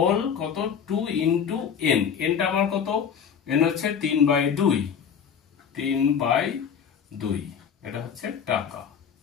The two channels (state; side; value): quieter; right; 7.4 dB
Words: কত 2 × n, nটা আমার কত, n হচ্ছে 3/2, 3/2, এটা হচ্ছে টাকা।